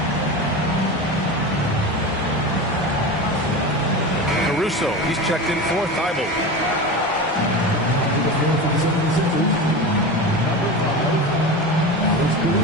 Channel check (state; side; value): normal; both; correlation 0.26